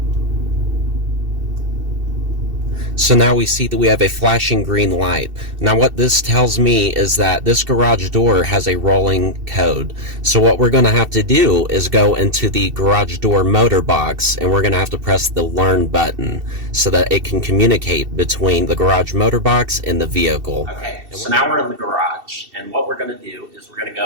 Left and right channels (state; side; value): late; left; 2.7 ms